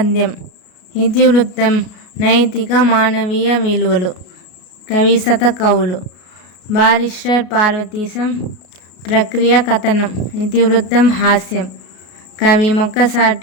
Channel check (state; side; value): late; right; 33 ms